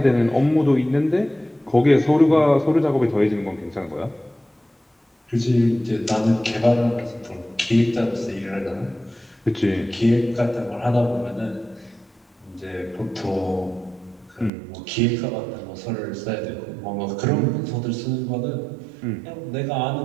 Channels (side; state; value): left; drops out; at 14.5 s